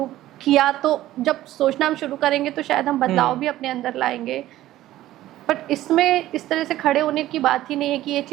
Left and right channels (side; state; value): left; quieter; 14.7 dB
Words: किया, तो जब सोचना हम शुरू करेंगे तो शायद हम बदलाव भी अपने अंदर लाएंगे। बट इसमें इस तरह से खड़े होने की बात ही नहीं है कि ये